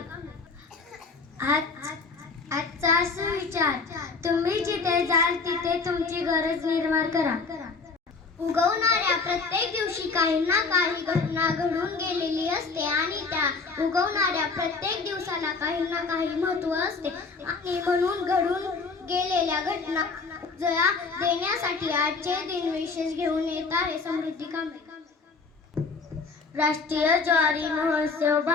आजचा सुविचार. तुम्ही जिथे जाल तिथे तुमची गरज निर्माण करा. उगवणाऱ्या प्रत्येक दिवशी काही ना काही घटना घडून गेलेली असते आणि त्या उगवणाऱ्या प्रत्येक दिवसाला काही ना काही महत्त्व असते आणि म्हणून घडून गेलेल्या घटना जया देण्यासाठी आजचे दिन विशेष घेऊन येत आहे समृद्धी कांबळे. राष्ट्रीय ज्वारी महोत्सव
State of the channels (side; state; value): right; quieter; 4.4 dB